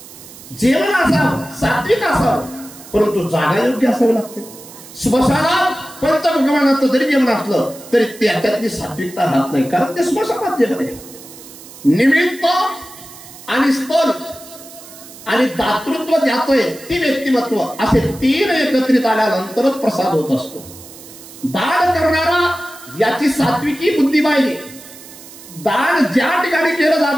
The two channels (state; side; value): noise; right; hiss, 18 dB below the sound